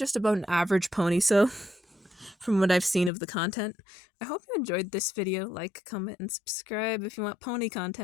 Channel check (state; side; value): drops out; right; at 3.1 s